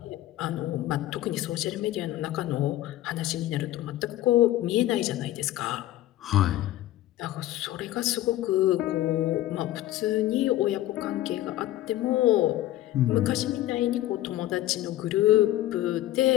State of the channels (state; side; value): quieter; right; 14.7 dB